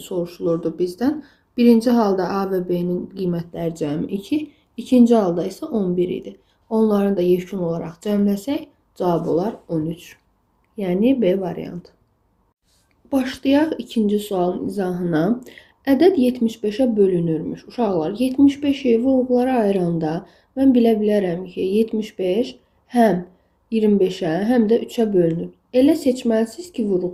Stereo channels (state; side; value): identical; both; correlation 1.00